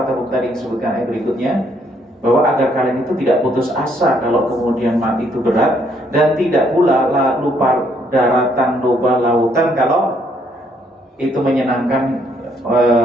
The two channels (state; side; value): normal; both; correlation 0.69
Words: tadi disebutkan ayat berikutnya, bahwa agar kalian itu tidak putus asa kalau kemudian mati itu berat, dan tidak pula lupa daratan, lupa lautan kalau itu menyenangkan,